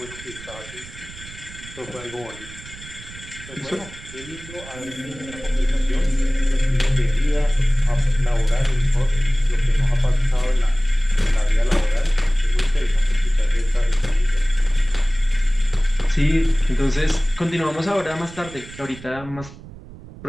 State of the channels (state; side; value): noise; right; rumble, 16 dB below the sound